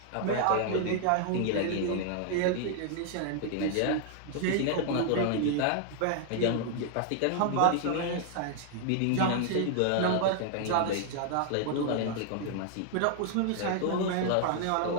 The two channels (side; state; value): both; different; correlation 0.00